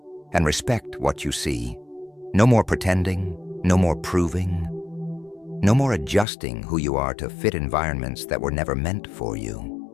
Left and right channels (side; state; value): right; drops out; at 6.2 s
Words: and respect what you see. No more pretending, no more proving, no more adjusting who you are to fit environments that were never meant for